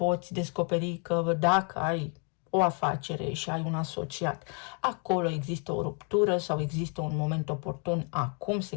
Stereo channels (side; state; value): right; quieter; 37.2 dB